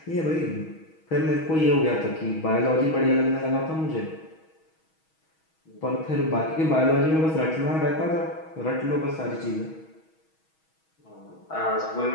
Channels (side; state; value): right; late; 6.3 ms